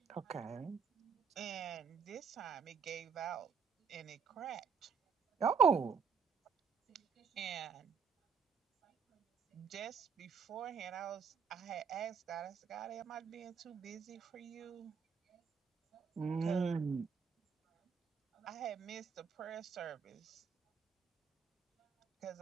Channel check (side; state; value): left; quieter; 6.3 dB